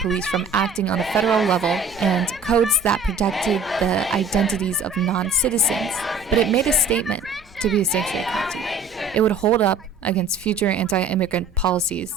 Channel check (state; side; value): quieter; left; 4.2 dB